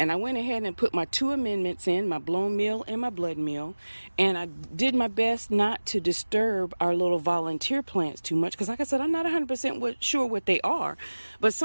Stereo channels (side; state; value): both; inverted; correlation -1.00